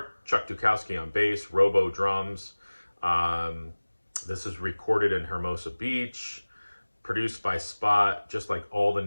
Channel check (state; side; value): inverted; both; correlation -1.00